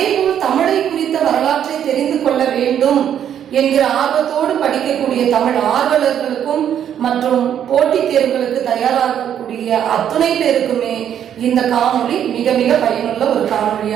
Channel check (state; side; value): quieter; left; 9.6 dB